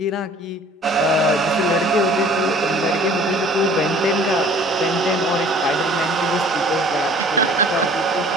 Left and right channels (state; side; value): normal; both; correlation 0.51